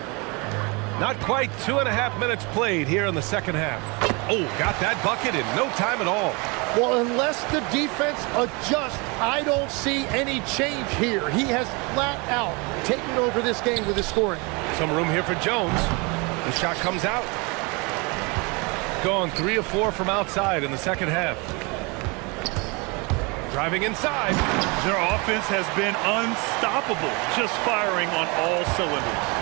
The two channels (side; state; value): left; quieter; 29.0 dB